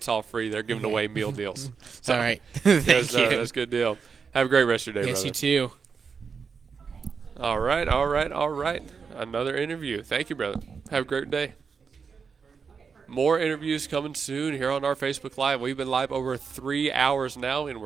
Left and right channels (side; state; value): left; quieter; 5.7 dB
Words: all free. They're giving away meal deals. All right. Thank yes, you. That's a good deal. Have a great rest of your day, Yes, brother. you too. All right. Another interview. Thank you, brother. Have a great day. More interviews coming soon here on our Facebook Live. We've been live over 3 hours now, and